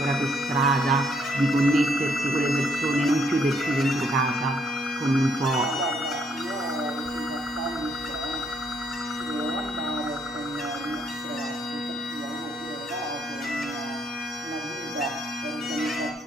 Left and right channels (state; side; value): normal; both; correlation 0.71